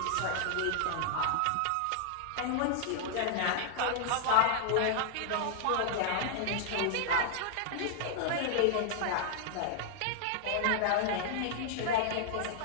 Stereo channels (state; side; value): different; both; correlation -0.01